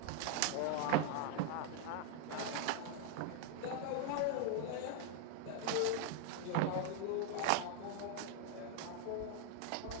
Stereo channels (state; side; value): different; both; correlation 0.00